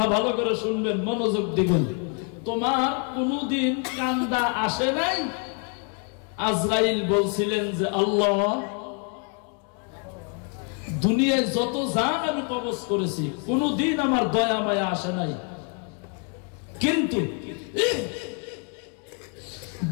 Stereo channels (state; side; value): quieter; right; 38.3 dB